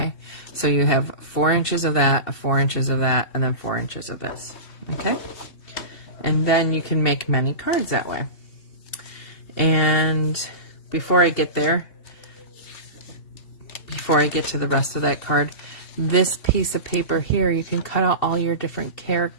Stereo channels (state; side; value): late; right; 2.7 ms